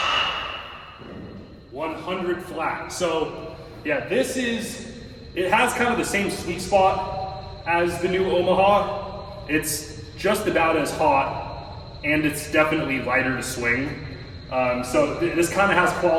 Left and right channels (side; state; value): both; identical; correlation 1.00